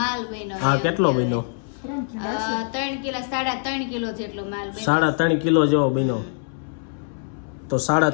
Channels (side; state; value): right; silent; 63 dB below the other